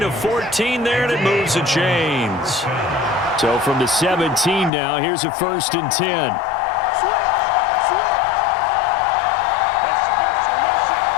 of 14 there, and it moves the chains. So from the 17 now, here's a 1st and 10.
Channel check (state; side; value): drops out; right; at 4.7 s